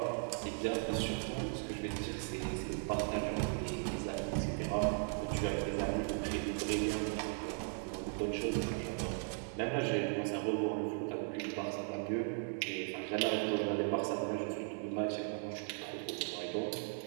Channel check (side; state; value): left; silent; 53 dB below the other